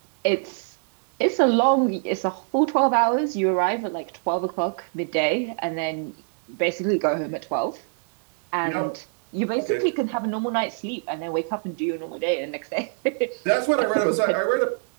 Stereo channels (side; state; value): left; silent; 55 dB below the other